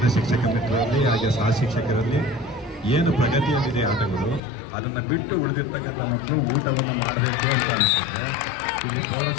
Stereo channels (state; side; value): drops out; right; at 4.4 s